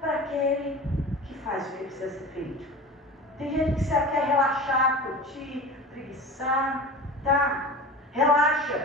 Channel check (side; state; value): both; normal; correlation 0.34